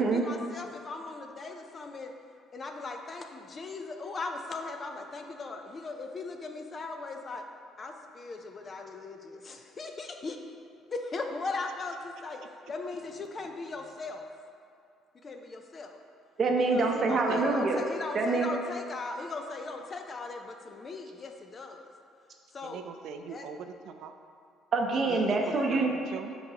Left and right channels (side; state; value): both; normal; correlation 0.67